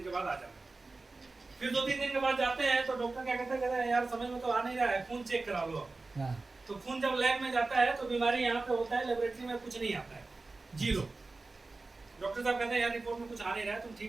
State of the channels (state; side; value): quieter; left; 3.5 dB